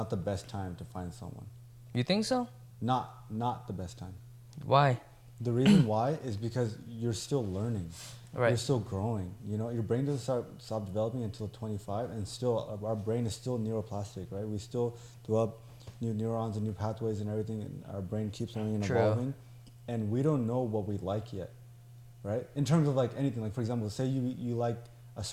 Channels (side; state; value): both; identical; correlation 1.00